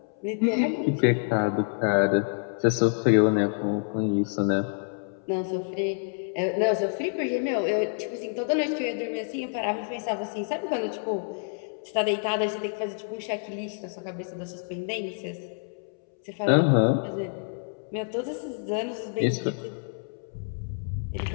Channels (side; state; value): right; silent; 60 dB below the other